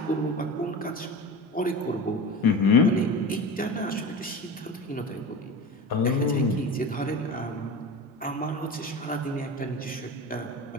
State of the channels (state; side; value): normal; both; correlation 0.30